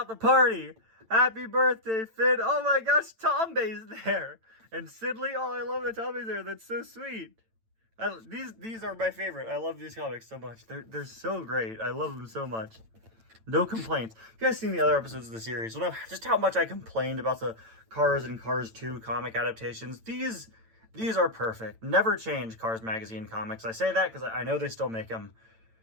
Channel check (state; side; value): late; left; 8.9 ms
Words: the party. Happy birthday, Finn. Oh my gosh, Tombey's there. And Sidley. Oh, I love that Tombey's there. That's so sweet. These are my favorite. I love these comics so much. They're so great. I love them so much. No complaints. If you guys seen the other episodes of the series, you'll know just how much I complained about the Cars and Cars 2 comic adaptations. These are perfect. Never change Cars Magazine comics. I say that because I know they still make them.